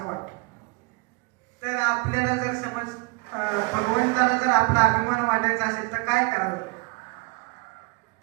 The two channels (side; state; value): left; quieter; 27.5 dB